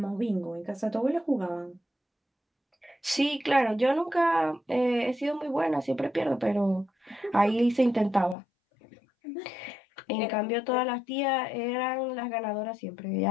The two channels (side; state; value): right; drops out; at 8.3 s